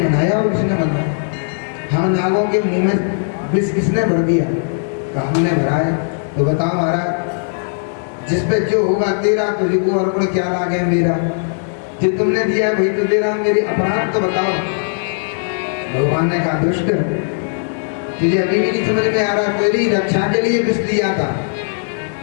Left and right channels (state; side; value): silent; right; digital silence